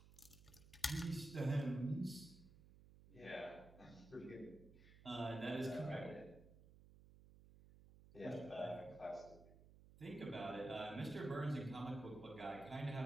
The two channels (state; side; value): noise; right; hum, 19 dB below the sound